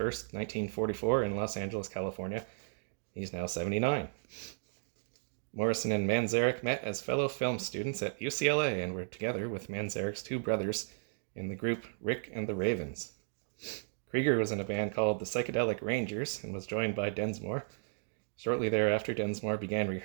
1944 in Los Angeles, California. He's now 79. Morrison and Manzarek met as fellow film students at UCLA and were together with Manzarek's 2 brothers in the group Rick and the Ravens. Krieger was in a band called the Psychedelic Rangers and was joined by Densmore. Shortly thereafter, Densmore began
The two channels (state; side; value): silent; left; digital silence